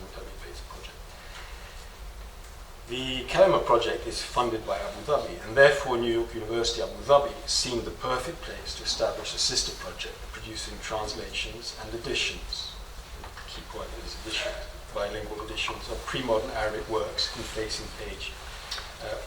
Dhabi-based project. The Kalima project is funded by Abu Dhabi, and therefore New York University Abu Dhabi seemed the perfect place to establish a sister project producing translations and editions. The key point is editions, bilingual editions of pre-modern Arabic works in facing page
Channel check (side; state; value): both; identical; correlation 1.00